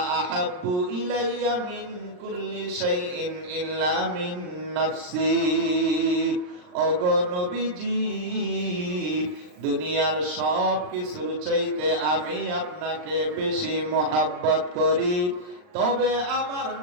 আহাব্বু ইলাইয়া মিন কুল্লি শাইইন ইল্লা মিন নাফসি। ওগো নবীজি দুনিয়ার সব কিছুর চাইতে আমি আপনাকে বেশি মহব্বত করি, তবে আমার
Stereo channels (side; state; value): left; late; 39 ms